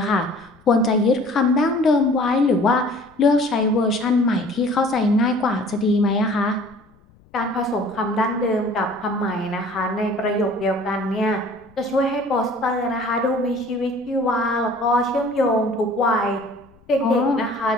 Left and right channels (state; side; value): noise; left; rumble, 29 dB below the sound